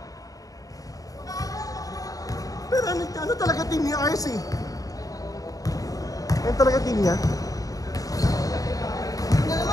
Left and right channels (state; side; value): late; right; 0.17 ms